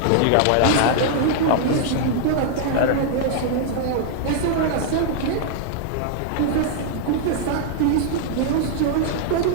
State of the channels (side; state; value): both; different; correlation -0.01